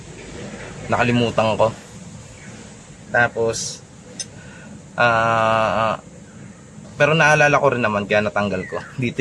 Nakalimutan ko. Tapos pero naalala ko rin naman kaya natanggal ko. Dito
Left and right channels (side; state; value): both; identical; correlation 1.00